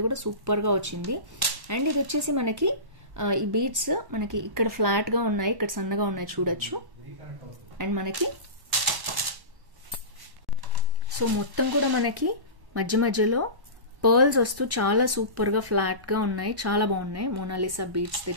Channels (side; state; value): left; late; 1.1 ms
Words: కూడా సూపర్గా వచ్చింది. అండ్ ఇది వచ్చేసి మనకి ఈ బీడ్స్ మనకి ఇక్కడ ఫ్లాట్గా ఉన్నాయి, ఇక్కడ సన్నగా ఉన్నాయి చూడొచ్చు. అండ్ మనకి సో మొత్తం కూడా మనకి మధ్య మధ్యలో పర్ల్స్ వస్తూ చాలా సూపర్గా ఫ్లాట్గా ఉన్నాయి. చాలా బాగున్నాయి. మోనాలిసా బీడ్స్